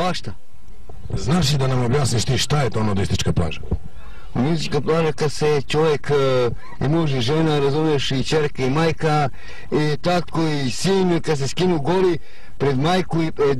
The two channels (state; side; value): identical; both; correlation 1.00